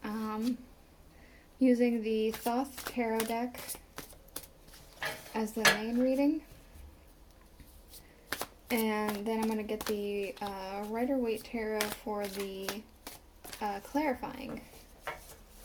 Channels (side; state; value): both; identical; correlation 1.00